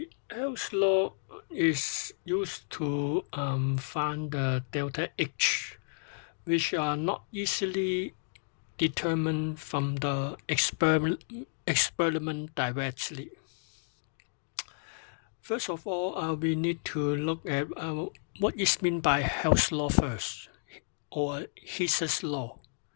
Hell's Law is used to find the delta H, which are not easily determined from the experiment directly. First of all, we need to look at what is meant by Hell's Law first, or Hess's Law.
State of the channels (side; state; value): right; silent; digital silence